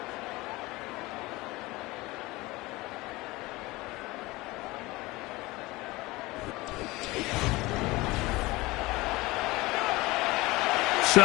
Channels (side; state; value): right; quieter; 21.1 dB